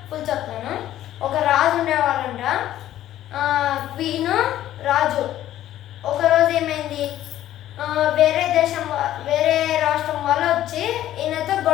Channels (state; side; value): quieter; right; 12.9 dB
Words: ఫుల్ చెప్తాను. ఒక రాజు ఉండేవాళ్ళంట. క్వీన్, రాజు. ఒకరోజు ఏమైంది, వేరే రాష్ట్రం వాళ్ళు వచ్చి ఈయనతో